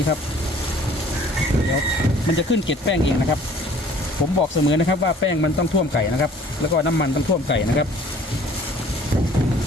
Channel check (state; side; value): normal; both; correlation 0.53